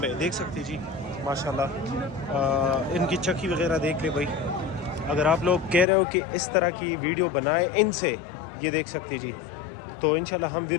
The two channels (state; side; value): drops out; right; at 5.9 s